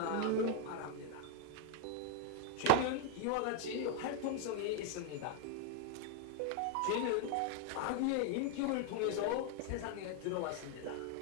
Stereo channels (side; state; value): both; different; correlation 0.01